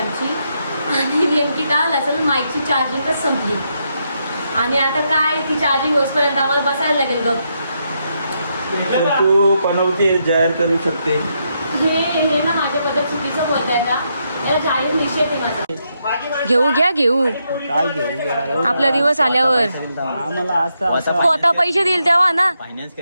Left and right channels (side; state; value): both; inverted; correlation -0.80